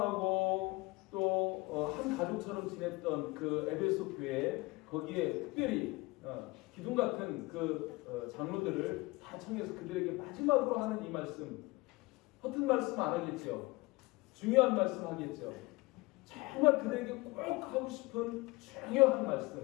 또 한 가족처럼 지냈던 그 에베소 교회, 거기에 특별히 기둥 같은 그 장로들을 다 청해서 그들에게 마지막으로 하는 이 말씀, 허튼 말씀 안 하겠죠. 중요한 말씀 하겠죠. 정말 그들에게 꼭 하고 싶은 중요한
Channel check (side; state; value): right; quieter; 23.4 dB